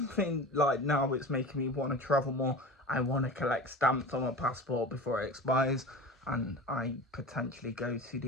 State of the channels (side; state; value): both; normal; correlation 0.33